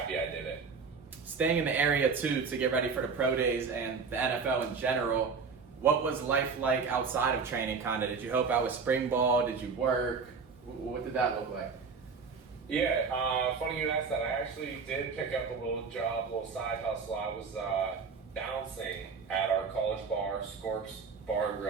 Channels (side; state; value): left; quieter; 5.2 dB